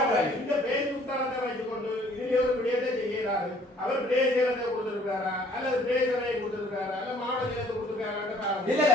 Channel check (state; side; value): normal; both; correlation 0.58